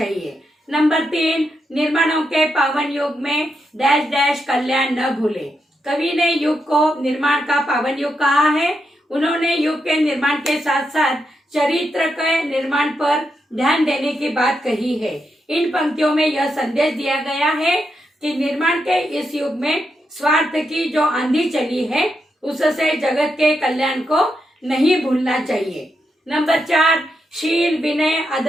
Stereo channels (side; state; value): both; normal; correlation 0.83